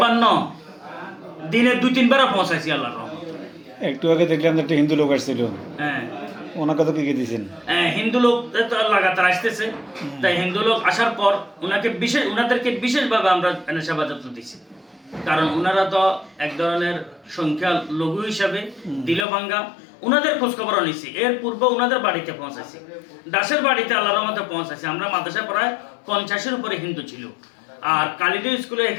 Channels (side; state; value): right; drops out; at 19.2 s